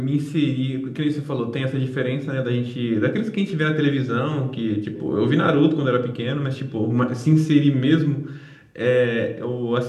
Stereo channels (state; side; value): identical; both; correlation 1.00